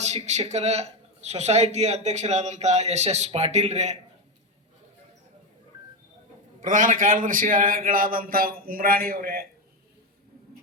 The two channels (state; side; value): normal; both; correlation 0.12